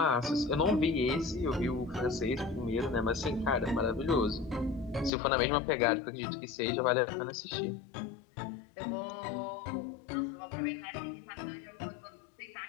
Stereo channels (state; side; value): drops out; right; at 5.1 s